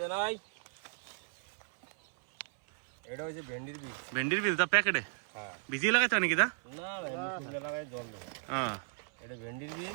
নাই। এটা হচ্ছে ভেন্ডির বীজ। ভেন্ডির বীজ দা প্যাকেটে হ্যাঁ, ভিজিয়ে লাগাতে হয় নাকি দা? না না, এমনি শুকনো লাগাই জল দেবো। হ্যাঁ, এটা ভেন্ডির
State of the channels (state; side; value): silent; left; 54 dB below the other